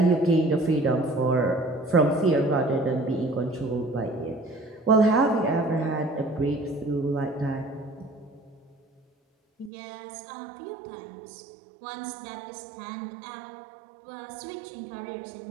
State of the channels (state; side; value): drops out; left; at 9.7 s